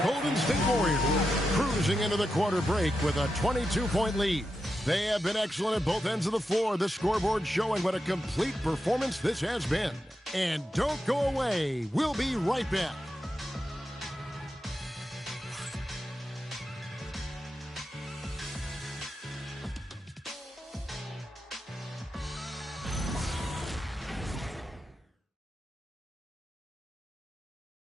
Golden State Warriors cruising into the quarter break with a 22-point lead. They have been excellent at both ends of the floor. The scoreboard showing what a complete performance this has been. And don't go away. We'll be right back.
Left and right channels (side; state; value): both; normal; correlation 0.88